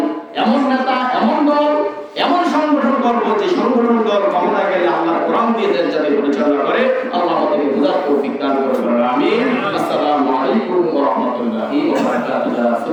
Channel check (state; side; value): identical; both; correlation 1.00